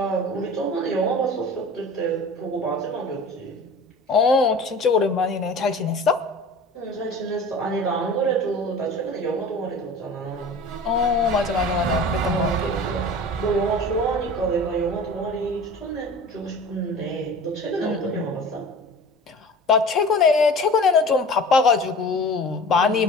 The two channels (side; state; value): both; normal; correlation 0.39